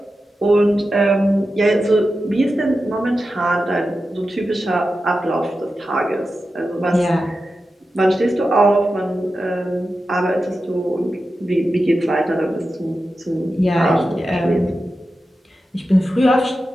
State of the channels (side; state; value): both; normal; correlation 0.91